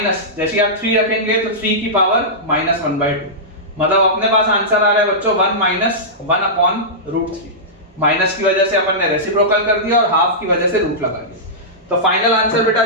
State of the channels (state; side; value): normal; both; correlation -0.15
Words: जैसे आप 3 रखेंगे तो 3 की पावर -1/2 मतलब अपने पास आंसर आ रहा है बच्चों 1 माइनस 1 अपॉन √3। माइनस की वजह से अपन ने रेसिप्रोकल कर दिया और हाफ की वजह से रूट लगा दिया। तो फाइनल आंसर बेटा